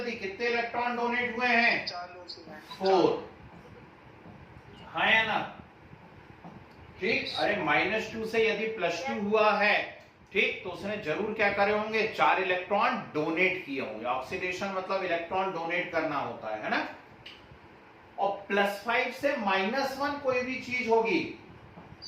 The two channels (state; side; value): identical; both; correlation 1.00